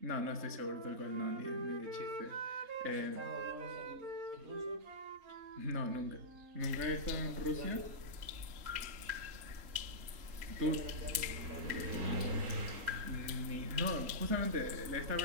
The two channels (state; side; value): late; left; 3.8 ms